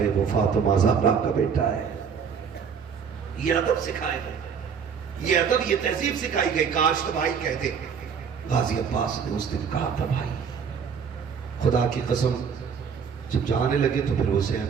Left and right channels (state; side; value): quieter; left; 6.7 dB